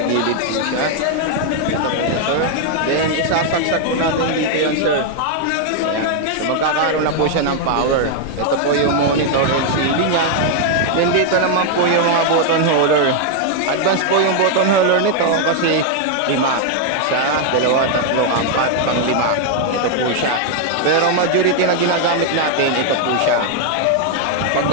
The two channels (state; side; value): different; both; correlation 0.00